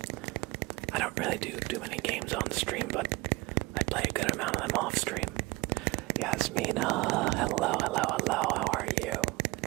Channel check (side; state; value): left; quieter; 22.8 dB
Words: I don't really do too many games on stream, but I play a good amount of them off stream. Yasmina, hello, how are you?